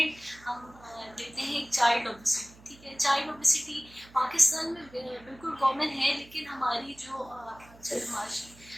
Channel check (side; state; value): right; noise; hum, 23 dB below the sound